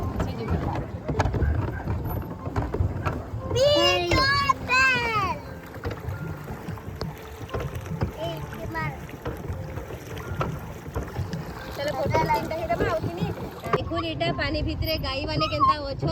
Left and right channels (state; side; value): identical; both; correlation 1.00